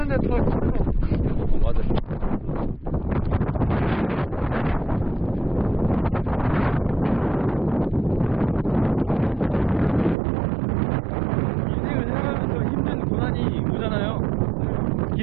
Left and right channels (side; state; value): left; drops out; at 10.2 s